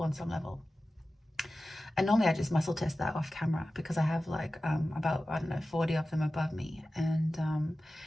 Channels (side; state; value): both; normal; correlation 0.95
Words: on some level. And normally I just muscle test that off camera because I have like about, I don't know, 40 of them above me. And